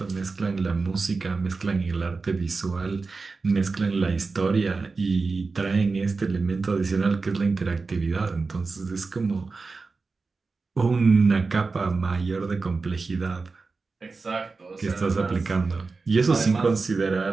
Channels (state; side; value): quieter; left; 4.2 dB